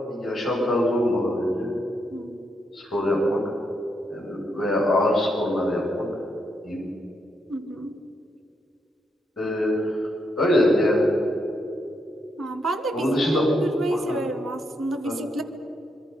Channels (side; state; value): both; normal; correlation 0.79